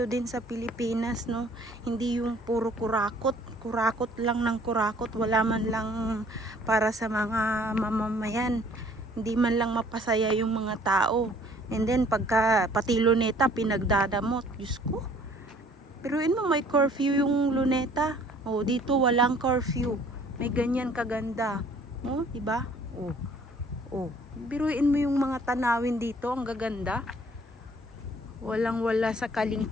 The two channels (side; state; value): both; normal; correlation 0.57